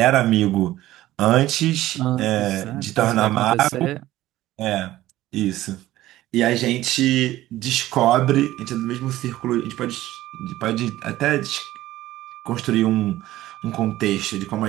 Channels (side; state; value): left; quieter; 15.4 dB